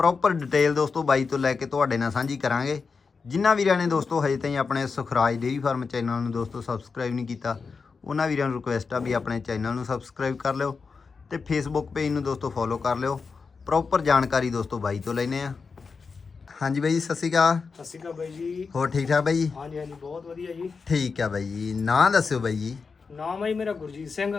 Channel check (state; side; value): quieter; right; 5.0 dB